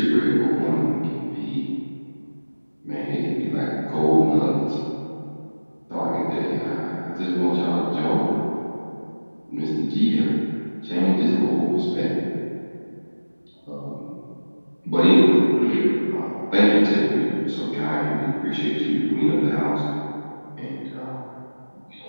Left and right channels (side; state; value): both; inverted; correlation -1.00